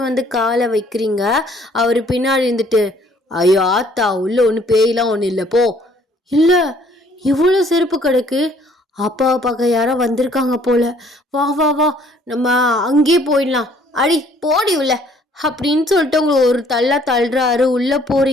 வந்து காலை வைக்கிறீங்க. அவர் பின்னாடி இருந்துட்டு, ஐயோ ஆத்தா, உள்ள ஒன்று பேயெல்லாம் ஒன்றும் இல்லை, போ. இல்லை, இவ்வளோ செருப்பு கிடக்கு. அப்பாவை பார்க்க யாரோ வந்திருக்காங்க போல. வா வா வா, நம்ம அங்கேயே போயிடலாம். அடி போடி உள்ள அப்படின்னு சொல்லிட்டு உங்களை ஒரு தள்ளுறாரு. உள்ளே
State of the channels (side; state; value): both; normal; correlation 0.60